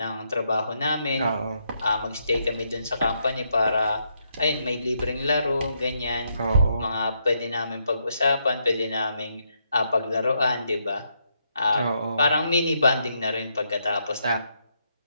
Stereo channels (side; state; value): both; inverted; correlation -0.78